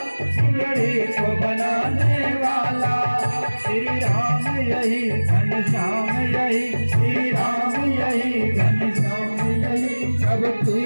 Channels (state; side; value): inverted; both; correlation -1.00